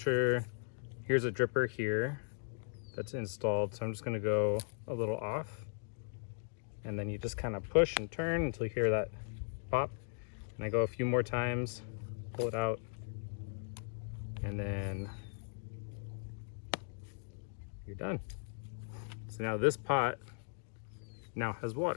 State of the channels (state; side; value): silent; right; digital silence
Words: here's a dripper here that's installed. So I'm just gonna go a little off. And then you just kind of push and turn until you hear that pop. And I go a few more times, pull it out, and then you're done. So now this pot now has